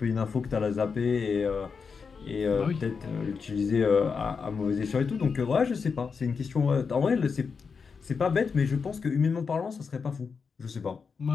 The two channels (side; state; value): right; quieter; 5.5 dB